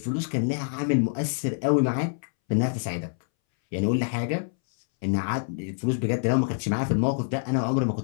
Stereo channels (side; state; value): right; silent; 61 dB below the other